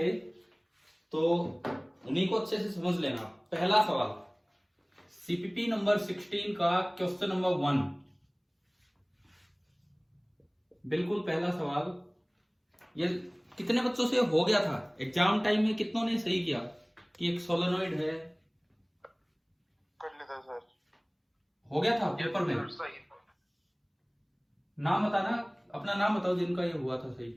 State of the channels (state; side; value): identical; both; correlation 1.00